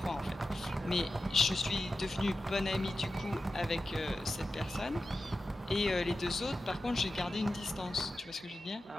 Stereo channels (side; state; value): both; normal; correlation 0.92